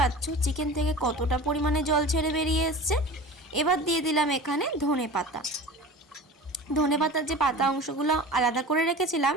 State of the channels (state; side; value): normal; both; correlation 0.36